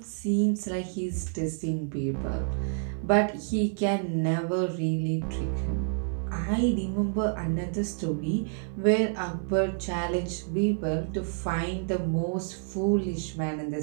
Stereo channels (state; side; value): silent; left; digital silence